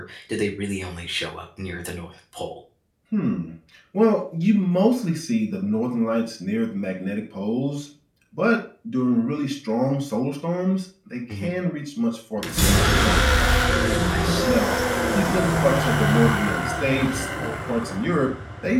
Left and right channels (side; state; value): both; identical; correlation 1.00